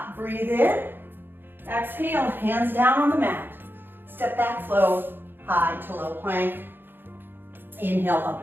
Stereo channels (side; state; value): left; late; 0.099 ms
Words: breathe in. Exhale, hands down on the mat. Step back, flow, high to low plank. Inhale,